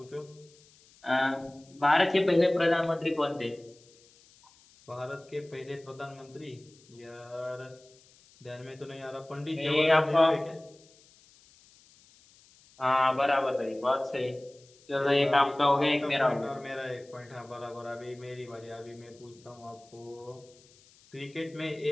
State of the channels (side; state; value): left; noise; hiss, 28 dB below the sound